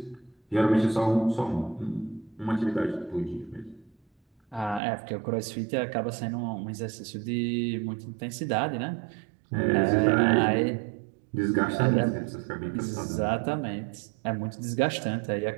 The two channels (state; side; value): drops out; left; at 4.8 s